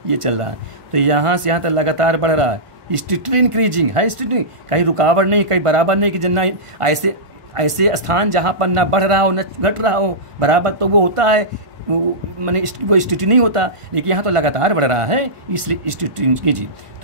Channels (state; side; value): late; left; 1.5 ms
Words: ये चल रहा है, तो यहाँ से यहाँ तक लगातार बढ़ रहा है, स्ट्रिक्टली इंक्रीजिंग है, स्ट्रिक्टली, कहीं रुकावट नहीं, कहीं बराबर नहीं कि जितना ऐसे ऐसे स्थान जहाँ पर ना बढ़ रहा हो न घट रहा हो बराबर, तो वो होता है, मैंने वो स्ट्रिक्ट नहीं होता। लेकिन यहाँ तो लगातार बढ़ रहा है, इसलिए स्ट्रिक्ट कीजिए।